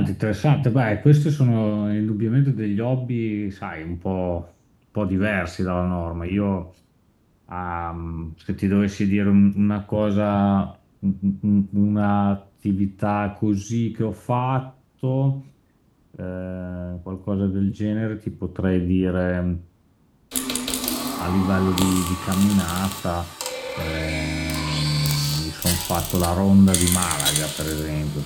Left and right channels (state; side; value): identical; both; correlation 1.00